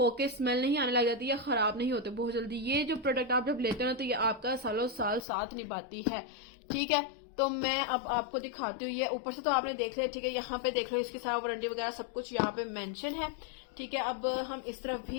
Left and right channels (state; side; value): drops out; right; at 5.2 s